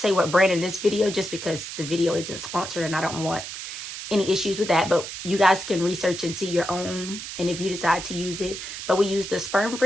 what brand in this video just because the video isn't sponsored and I don't want any issues with that, but you guys can research and see your own, and if you decide to use it. But we use the sperm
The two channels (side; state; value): right; noise; hiss, 9 dB below the sound